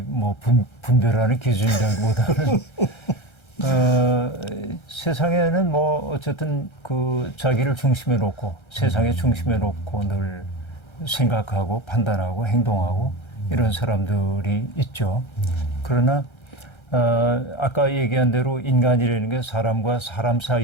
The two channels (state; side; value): late; right; 1.3 ms